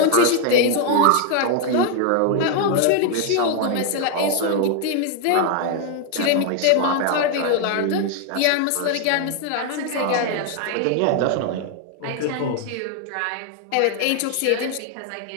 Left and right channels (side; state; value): both; different; correlation 0.00